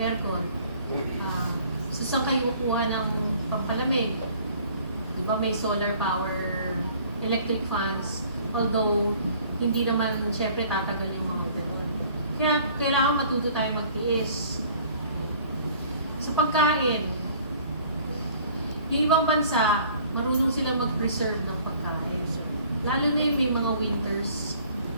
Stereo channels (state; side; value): inverted; both; correlation -0.54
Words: So saan kayo kukuha ng pampalamig? Di ba may solar power, electric fans, although hindi naman syempre tatagal yung mga gano'n. Kaya kailangan matuto tayo magtiis. Sa pagkain, yung ibang bansa, marunong silang mag-preserve ng pagkain. Lalo na yung may mga winters,